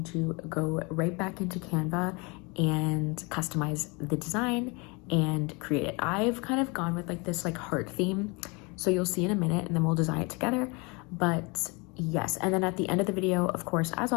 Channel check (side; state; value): right; quieter; 28.8 dB